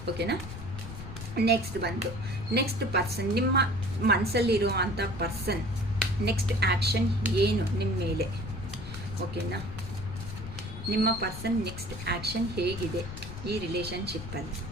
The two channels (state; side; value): noise; left; rumble, 10 dB below the sound